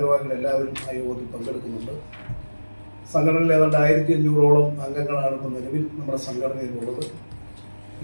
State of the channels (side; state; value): both; inverted; correlation -1.00